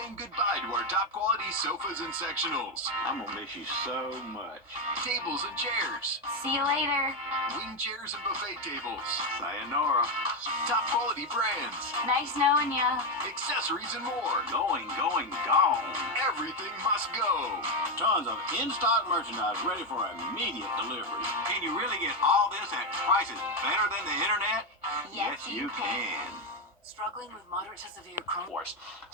goodbye to our top quality sofas and sectionals. I'm gonna miss you so much. Tables and chairs. See you later. Wing chairs and buffet tables. Sayonara. Top quality brands. Nice knowing ya. Accessories and more. Gone. Everything must go. Tons of in-stock merchandise ready for immediate delivery. Can you really get all this at prices better than the internet? Yes, you can. Struggling with moderate to severe Crohn's. Force.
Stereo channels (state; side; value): normal; both; correlation 0.08